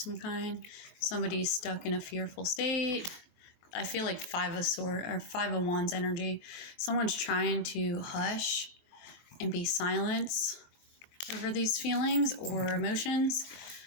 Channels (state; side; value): late; right; 24 ms